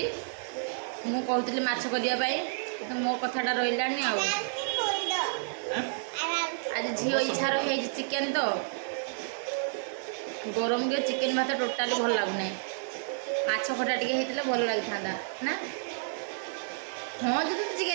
मु कहती माछ करने तो मो कथाटा रही आज झील इच्छा रही चिकेन तो गरम के चिकेन भात टोटाली भल लगुना माछ खटा टे होता भल लगी था ना हाँ जो तो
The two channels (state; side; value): silent; left; digital silence